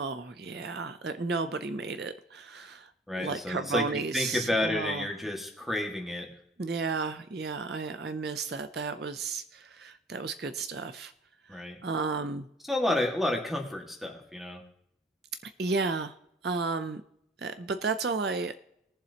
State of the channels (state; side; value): normal; both; correlation 0.49